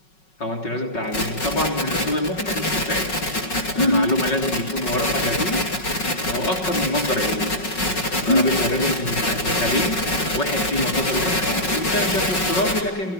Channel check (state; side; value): late; right; 5.4 ms